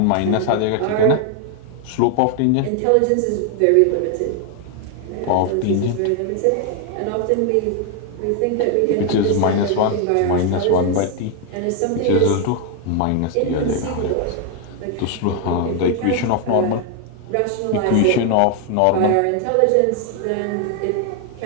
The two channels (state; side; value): different; both; correlation 0.00